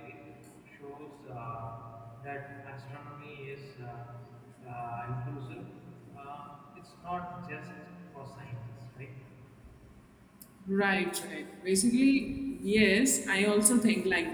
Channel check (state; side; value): identical; both; correlation 1.00